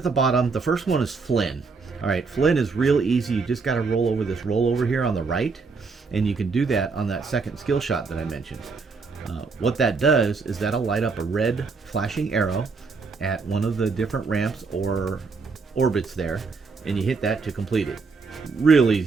the bottom. The first one is Flynn. All right, Flynn is real easy. You just got to roll over this rollover here on the right, and you can do that on that second skill shot that I mentioned. What that does is that'll light up a red flashing arrow at one of the different ramps or orbits there, and you hit that to complete it. Real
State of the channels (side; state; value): left; quieter; 4.6 dB